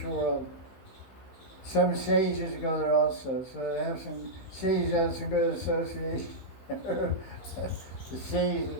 world. Some sages go there also, so they have some sages have some good association. The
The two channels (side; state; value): right; late; 16 ms